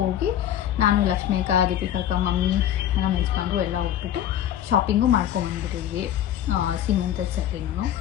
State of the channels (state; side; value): quieter; right; 11.0 dB